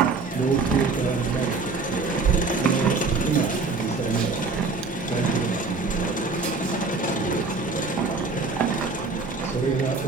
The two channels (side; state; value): left; quieter; 4.1 dB